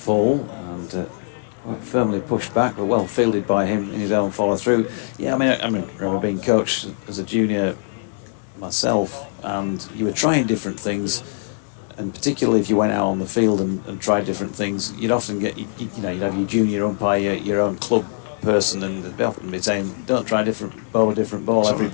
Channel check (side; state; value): right; silent; digital silence